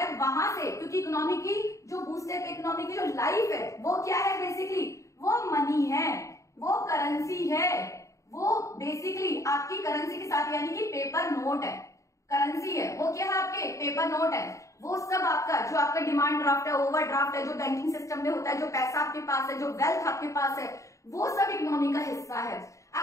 वहां से, क्योंकि इकोनॉमी की जो बूस्टअप, इकोनॉमी की जो लाइफ है, वो क्या है बेसिकली, वो मनी है, वो करेंसी है, वो बेसिकली आपकी करेंसी के साथ, यानी कि पेपर नोट है, करेंसी है, वो क्या है आपके पेपर नोट है। वो सब आपका जो आपका डिमांड ड्राफ्ट है, ओवर ड्राफ्ट है, जो बैंकिंग सिस्टम में होता है, जो पैसा आपके पास है, जो वेल्थ आपके पास है, वो सब इकोनॉमी का हिस्सा है।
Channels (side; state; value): right; late; 0.15 ms